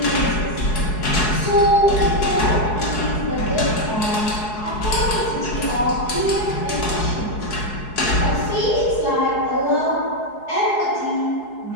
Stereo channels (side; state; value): right; late; 4.7 ms